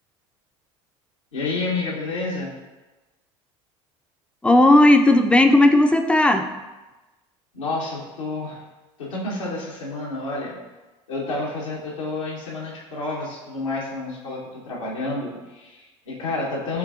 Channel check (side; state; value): both; normal; correlation 0.76